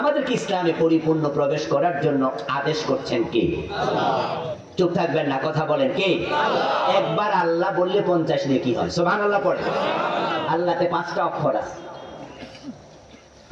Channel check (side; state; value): both; identical; correlation 1.00